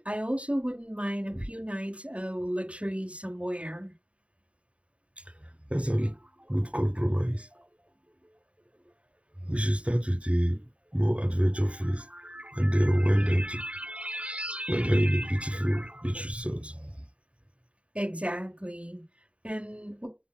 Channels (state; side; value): late; left; 0.063 ms